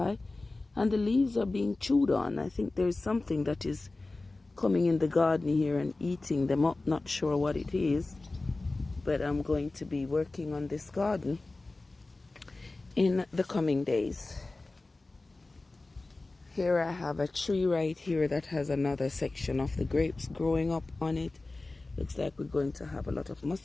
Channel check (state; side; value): quieter; right; 3.2 dB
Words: and the leaves are being chewed on. I think there's something that is coming in the garden here and eating them up. Not sure what it is, but I'm going to be working on this garden in the coming days. Here I have a tree right here that has another section of the grapes growing up on it. Looks like we're going to have a lot of